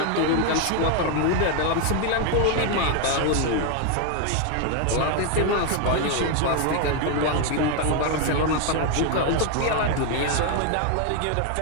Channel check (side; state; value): both; different; correlation 0.01